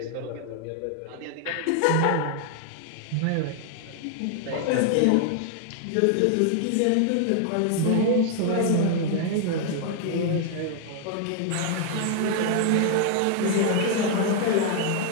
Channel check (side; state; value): both; different; correlation 0.00